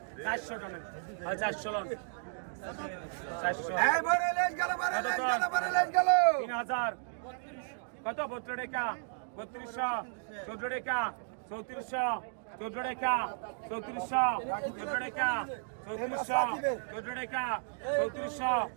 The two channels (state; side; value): silent; left; digital silence